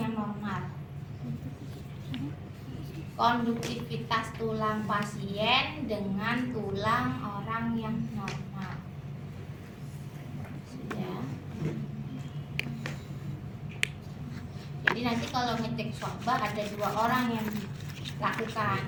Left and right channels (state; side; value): identical; both; correlation 1.00